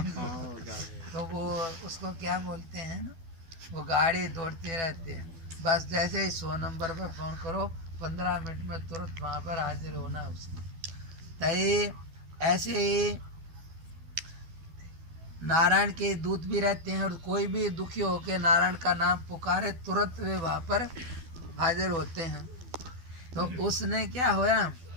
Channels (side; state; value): left; late; 12 ms